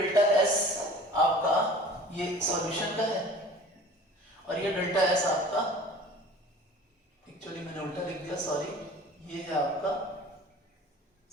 एस आपका ये सॉल्यूशन का है और ये डेल्टा एस आपका, एक्चुअली मैंने उल्टा लिख दिया, सॉरी, ये है आपका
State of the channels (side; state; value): both; normal; correlation 0.44